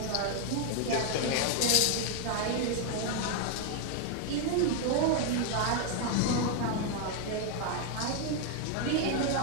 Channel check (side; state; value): both; different; correlation 0.00